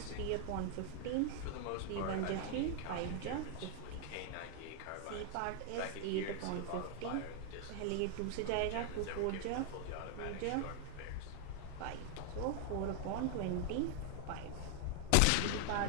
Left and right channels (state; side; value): different; both; correlation 0.00